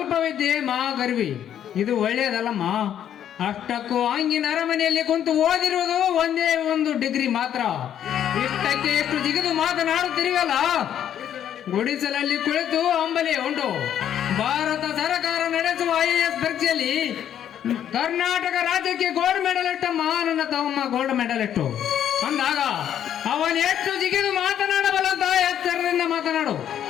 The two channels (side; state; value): right; quieter; 10.0 dB